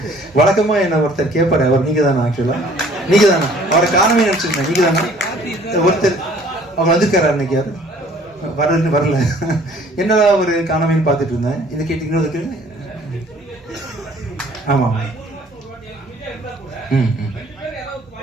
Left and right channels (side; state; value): both; normal; correlation 0.55